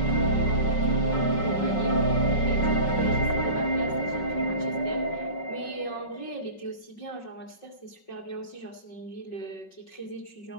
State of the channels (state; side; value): late; right; 5.4 ms